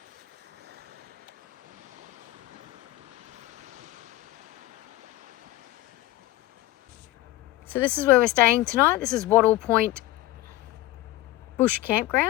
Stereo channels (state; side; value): quieter; right; 16.8 dB